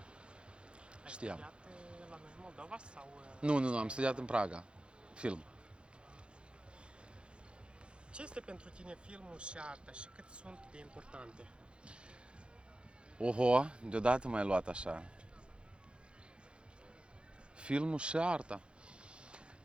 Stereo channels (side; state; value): left; late; 0.056 ms